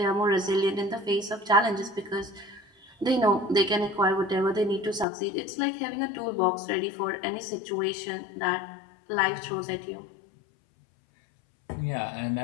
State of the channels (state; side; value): drops out; right; at 5.1 s